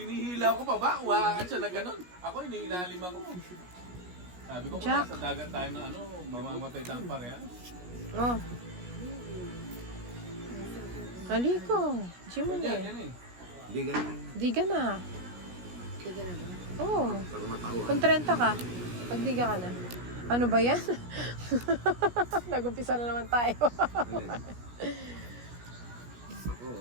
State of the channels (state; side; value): late; left; 17 ms